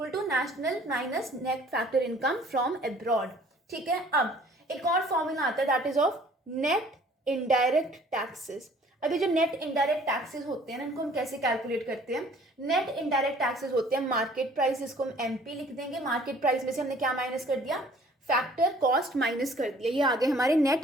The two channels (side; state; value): both; normal; correlation 0.54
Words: to national minus net factor income from abroad. ठीक है, अब एक और फॉर्मूला आता है that is of net indirect taxes. अभी जो नेट इनडायरेक्ट टैक्सेस होते हैं ना, इनको हम कैसे कैलकुलेट करते हैं? नेट इनडायरेक्ट टैक्सेस होते हैं मार्केट प्राइस, इसको हम MP लिख देंगे. मार्केट प्राइस में से हमने क्या माइनस कर दिया? फैक्टर कॉस्ट माइनस कर दिया. ये आ गए हमारे